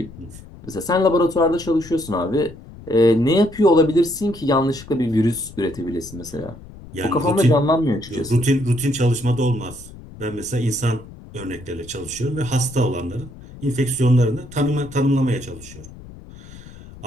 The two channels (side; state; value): left; noise; rumble, 18 dB below the sound